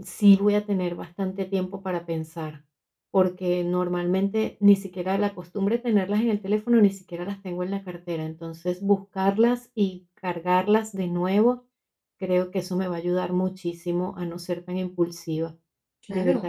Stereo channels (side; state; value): both; identical; correlation 1.00